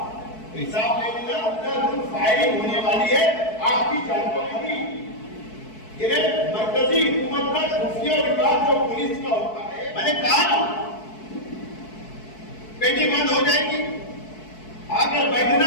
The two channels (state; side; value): late; right; 4.6 ms